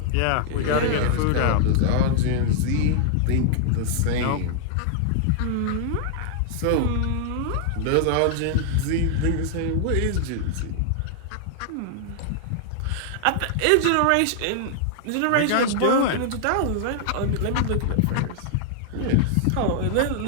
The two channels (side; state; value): both; different; correlation 0.00